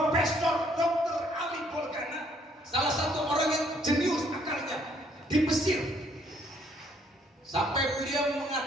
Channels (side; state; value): both; normal; correlation 0.66